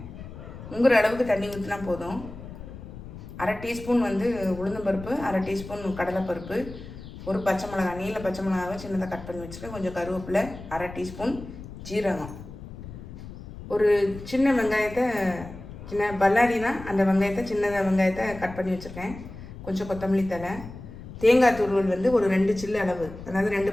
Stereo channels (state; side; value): noise; left; rumble, 13 dB below the sound